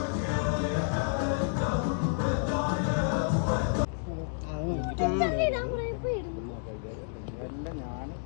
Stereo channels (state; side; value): silent; right; digital silence